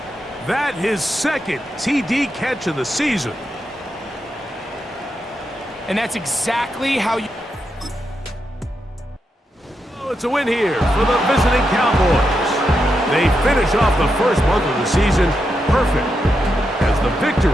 That his second TD catch of the season. And that's exactly how you... Oh, it's a win here for the visiting Cowboys. They finish off the first month of the season perfect as the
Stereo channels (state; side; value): normal; both; correlation 0.85